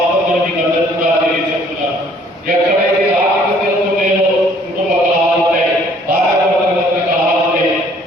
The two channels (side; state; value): both; normal; correlation 0.59